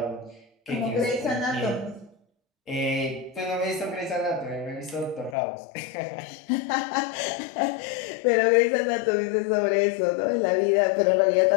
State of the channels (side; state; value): right; drops out; at 5.4 s